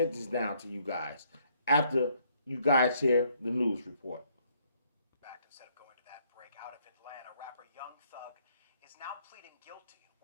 down to you guys after you guys hear the news report. Instead of going to that break out of Atlanta, rapper Young Thug is now pleading guilty in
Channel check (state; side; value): inverted; both; correlation -0.68